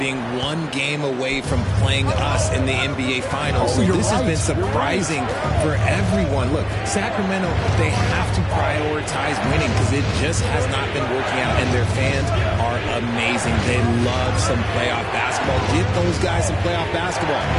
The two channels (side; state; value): both; identical; correlation 1.00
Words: one game away from playing us in the NBA Finals. So this has been surprising for everyone. Look, Sacramento, they have to prioritize winning because it just has not been working out. And their fans are amazing. They love some playoff basketball. Get those guys some playoff basketball.